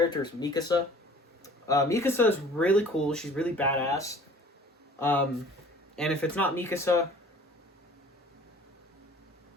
is Mikasa. Mikasa is really cool. She's really badass. And if it's not Mikasa,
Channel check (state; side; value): normal; both; correlation 0.49